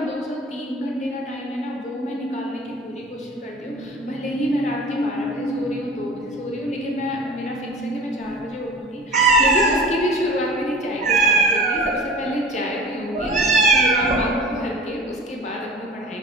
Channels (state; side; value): normal; both; correlation 0.40